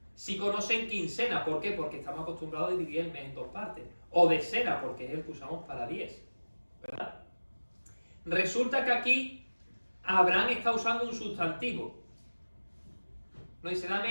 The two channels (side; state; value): both; inverted; correlation -1.00